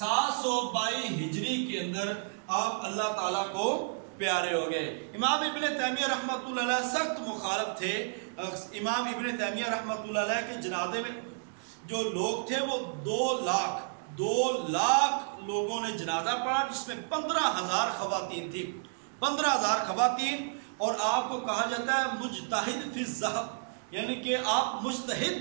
ہجری کے اندر آپ اللہ تعالیٰ کو پیارے ہو گئے. امام ابن تیمیہ رحمۃ اللہ علیہ سخت مخالف تھے. امام ابن تیمیہ رحمۃ اللہ علیہ کے جنازے میں جو لوگ تھے وہ 2 لاکھ لوگوں نے جنازہ پڑھا, جس میں 15,000 خواتین تھی. 15,000 خواتین. اور آپ کو کہا جاتا ہے مجتہد فی الذہب, یعنی کہ آپ مجتہد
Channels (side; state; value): left; silent; digital silence